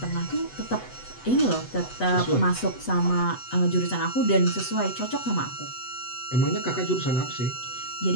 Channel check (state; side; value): late; right; 8.0 ms